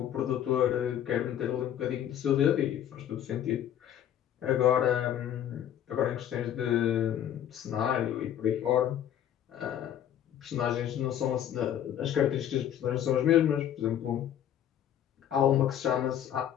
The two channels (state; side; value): quieter; right; 10.5 dB